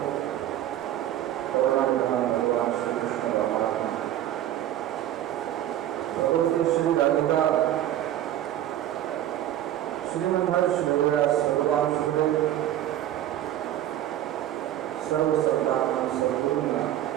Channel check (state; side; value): quieter; left; 12.3 dB